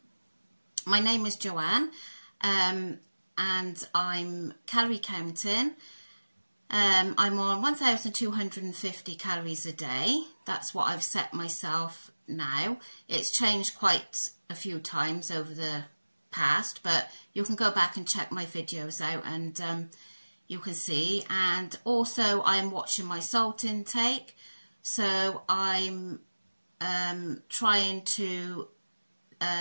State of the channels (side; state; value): both; inverted; correlation -1.00